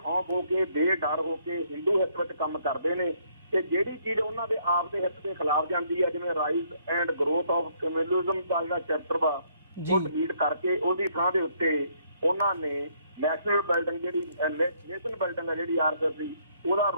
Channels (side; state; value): both; inverted; correlation -0.68